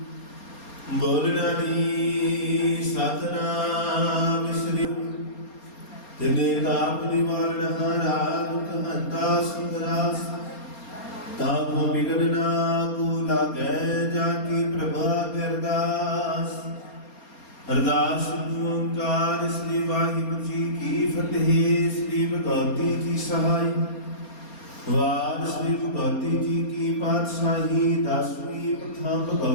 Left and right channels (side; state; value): right; late; 4.3 ms